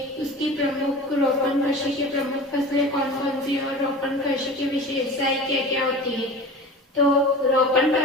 उसकी प्रमुख रोपण कृषि की प्रमुख फसलें कौन कौन सी और रोपण कृषि की विशेषताएं क्या क्या होती है। तो रोपण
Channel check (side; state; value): both; normal; correlation 0.35